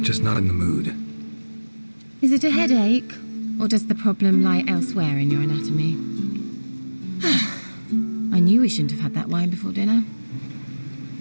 just not in the mood. Is it a headache? Or does the problem lie elsewhere in your anatomy? I knew we shouldn't have had that wine before dinner.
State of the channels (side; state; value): both; inverted; correlation -1.00